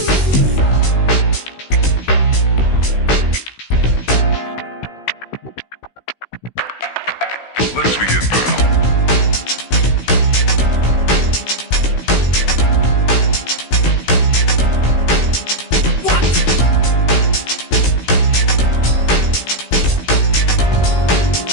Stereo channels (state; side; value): late; right; 16 ms